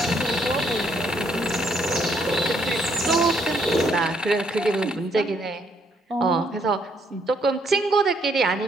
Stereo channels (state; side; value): normal; both; correlation 0.70